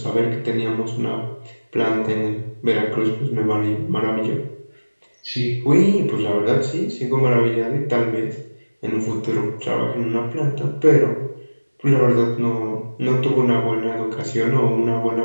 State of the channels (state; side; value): inverted; both; correlation -1.00